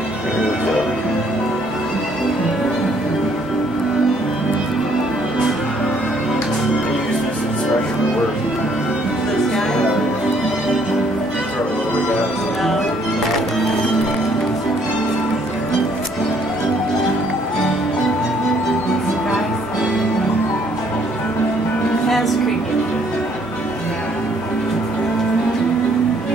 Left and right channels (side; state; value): both; normal; correlation 0.65